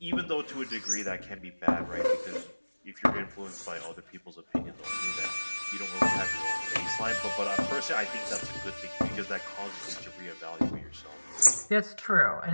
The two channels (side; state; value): both; inverted; correlation -1.00